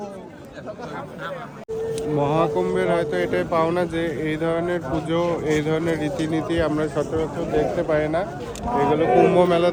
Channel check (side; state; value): both; identical; correlation 1.00